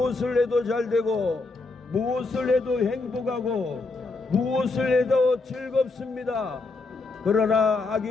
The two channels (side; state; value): right; quieter; 3.6 dB